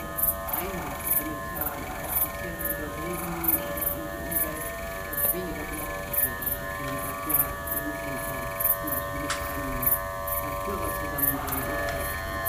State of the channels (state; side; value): identical; both; correlation 1.00